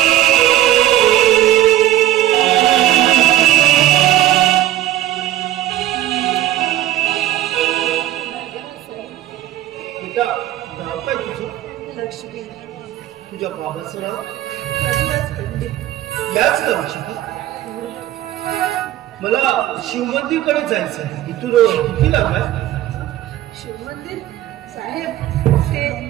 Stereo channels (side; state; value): left; quieter; 14.0 dB